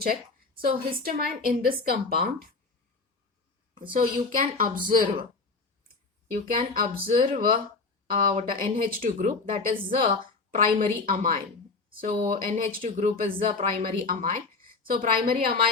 So histamine in this compound, so you can observe what a NH2 group, that is the primary amine. So NH2 group is the primary amine. So primary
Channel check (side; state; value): right; quieter; 4.0 dB